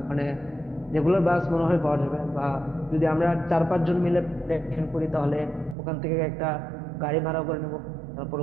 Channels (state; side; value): drops out; left; at 5.8 s